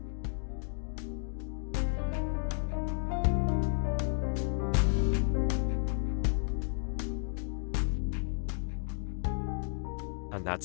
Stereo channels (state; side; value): silent; right; 56 dB below the other